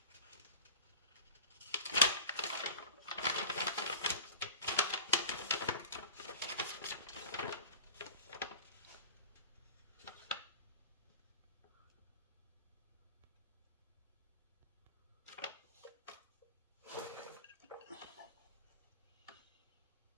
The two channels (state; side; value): inverted; both; correlation -0.37